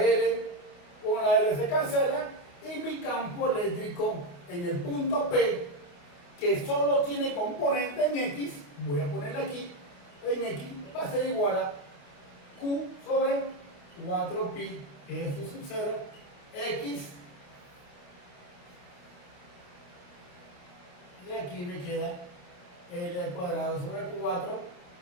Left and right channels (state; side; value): late; right; 27 ms